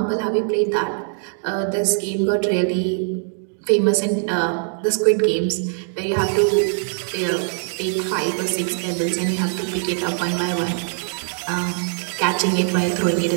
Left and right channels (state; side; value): silent; left; 64 dB below the other